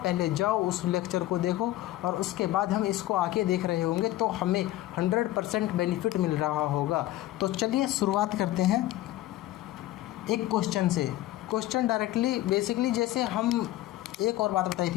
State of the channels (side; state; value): right; quieter; 15.4 dB